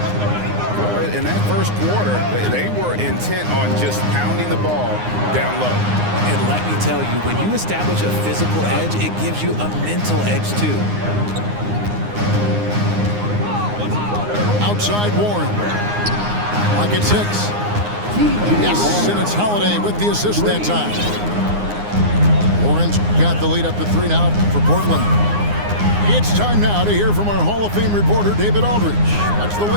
In that first quarter, they were intent on just pounding the ball down low. And let me tell you, when you establish a physical edge, it gives you a mental edge too. Outside Warren. Lock at 6. Yes, and it's Holiday with the assist that time. Warren's got the lead up to 3 now for Portland. It's time now to hear from our Hall of Fame reporter, David Aldridge. What's the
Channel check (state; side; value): late; left; 9.7 ms